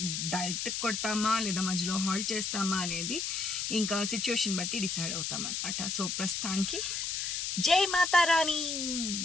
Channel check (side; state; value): left; noise; hiss, 2 dB below the sound